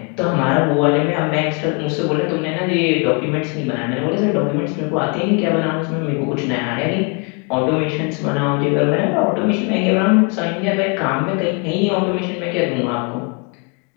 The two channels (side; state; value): right; quieter; 34.5 dB